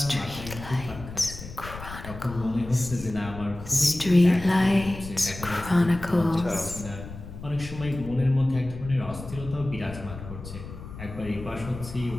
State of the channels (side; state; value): left; noise; rumble, 12 dB below the sound